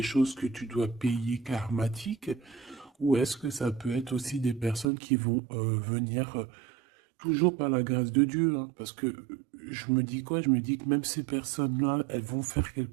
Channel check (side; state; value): left; drops out; at 4.9 s